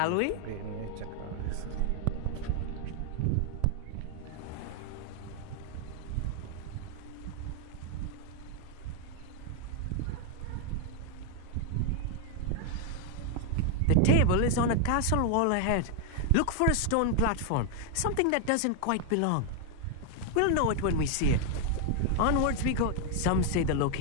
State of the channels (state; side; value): different; both; correlation 0.00